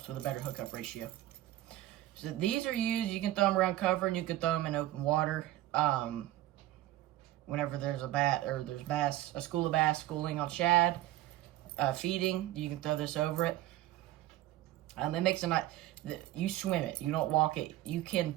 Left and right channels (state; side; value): quieter; left; 15.0 dB